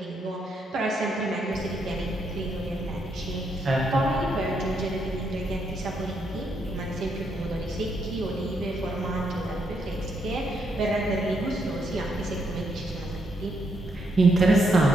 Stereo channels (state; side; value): normal; both; correlation 0.77